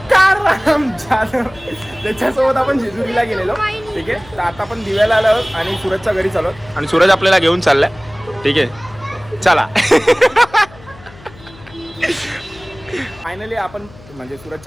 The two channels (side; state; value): left; noise; hum, 21 dB below the sound